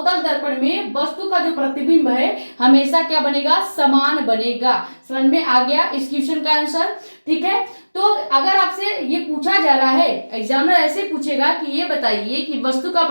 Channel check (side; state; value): both; inverted; correlation -1.00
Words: दर्पण में वस्तु का जो प्रतिबिंब है हमेशा क्या बनेगा, समान बनेगा। समझ में आ गया इस क्वेश्चन का आंसर। ठीक है, तो अगर आपसे ये पूछा जा रहा है, एग्जामिनर ऐसे पूछेगा कि ये बताइए कि वस्तु का